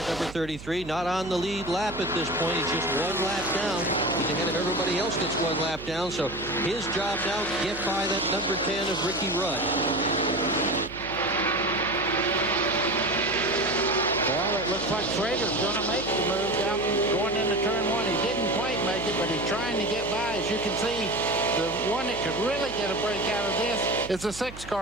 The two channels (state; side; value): noise; right; hum, 14 dB below the sound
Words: number 33. Not on the lead lap at this point. He's just 1 lap down. He's ahead of everybody else that's 1 lap down. So his job now to get by that number 10 of Ricky Rudd. Looks like Schrader's going to make the move down going into turn 1. He didn't quite make it, but he's trying to get by. As you can see, the one that could really get a break out of this is the 6